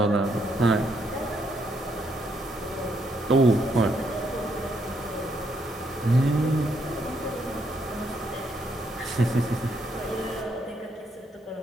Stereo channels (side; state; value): both; normal; correlation 0.74